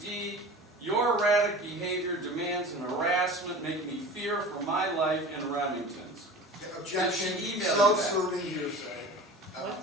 your erratic behavior demands an harassment, making me fear for my life in Remington's? Objection, Did she email you self-serving hearsay. What?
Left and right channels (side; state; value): both; normal; correlation 0.37